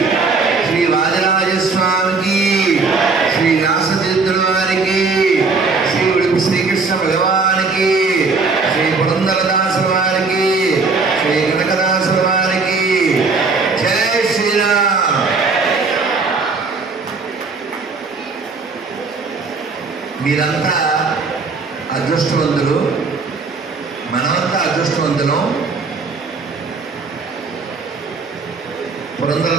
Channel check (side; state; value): left; quieter; 4.3 dB